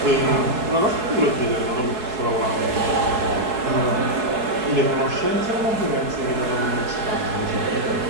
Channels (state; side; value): late; left; 4.7 ms